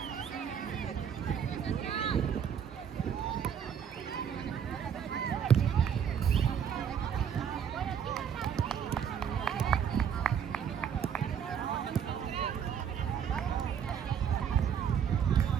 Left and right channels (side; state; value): left; quieter; 8.0 dB